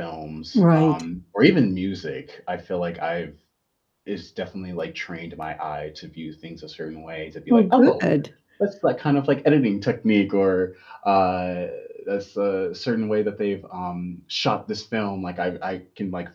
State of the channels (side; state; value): both; identical; correlation 1.00